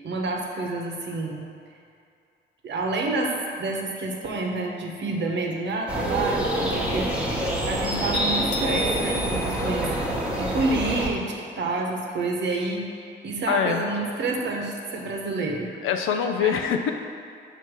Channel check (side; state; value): both; normal; correlation 0.33